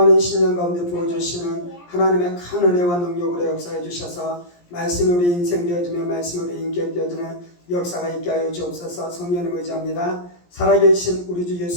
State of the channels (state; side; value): late; right; 17 ms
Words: 신령 가운데 부어주시는 하나님의 큰 은혜와 능력으로 역사해 주셔서 말씀이 우리 인생 되어지며 말씀이 우리 인격 되어지는 역사가 있게 하여 주옵소서. 성령을 의지합니다. 살아계신 우리 주